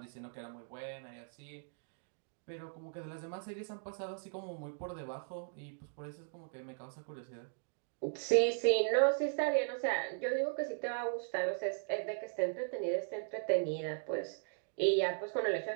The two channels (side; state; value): left; silent; digital silence